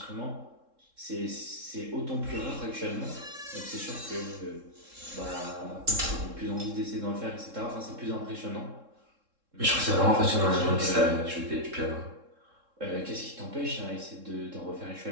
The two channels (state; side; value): late; left; 3.7 ms